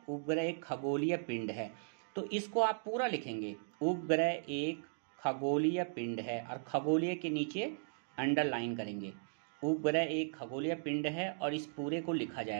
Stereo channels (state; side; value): silent; left; digital silence